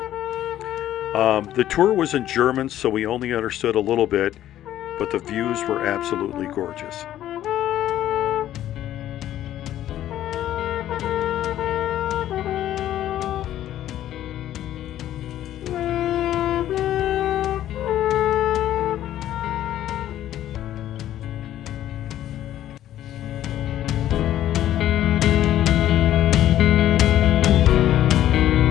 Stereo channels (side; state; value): right; quieter; 12.4 dB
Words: The tour was in German, so we only understood a little bit, but the views were absolutely gorgeous.